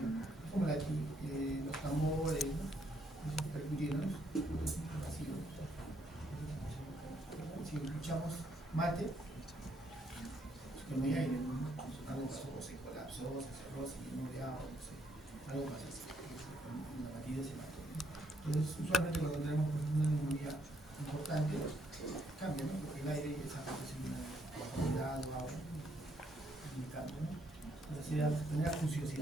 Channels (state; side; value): normal; both; correlation 0.72